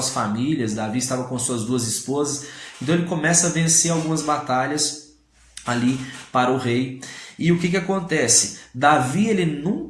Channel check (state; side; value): identical; both; correlation 1.00